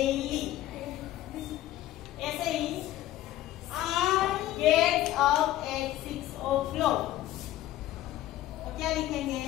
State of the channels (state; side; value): quieter; right; 14.4 dB